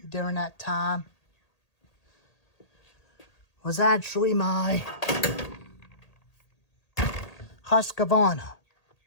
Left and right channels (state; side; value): late; right; 1.8 ms